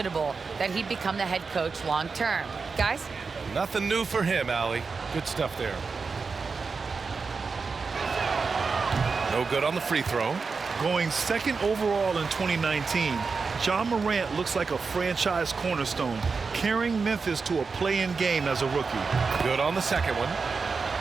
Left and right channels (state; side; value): quieter; left; 4.8 dB